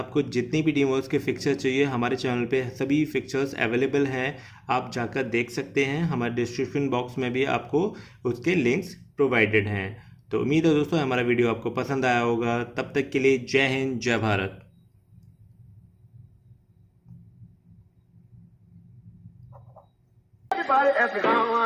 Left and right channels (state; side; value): identical; both; correlation 1.00